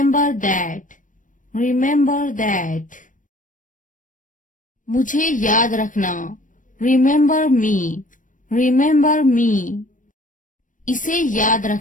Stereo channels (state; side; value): late; right; 0.38 ms